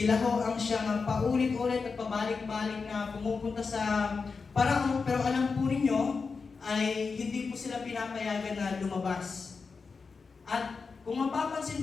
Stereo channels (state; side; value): quieter; right; 4.8 dB